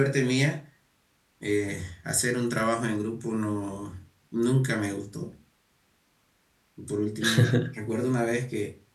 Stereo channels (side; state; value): both; identical; correlation 1.00